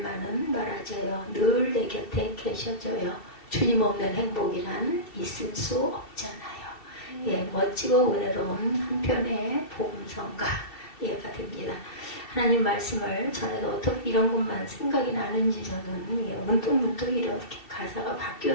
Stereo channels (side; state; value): right; late; 2.7 ms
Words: 말아줘요. 늘 내 곁에 계셔줘요. 주님 없는 행복이란 있을 수 없잖아요. 멋지고 은혜로운 한편의 복음성가가 됩니다. 하나님 말씀을 전에도 어떻게 이런 것만 생각이 나는지 저는 문득문득 이렇게 가사가